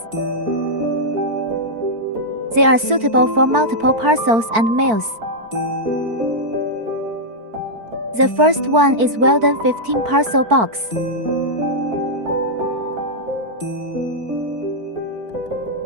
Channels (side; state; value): left; late; 4.5 ms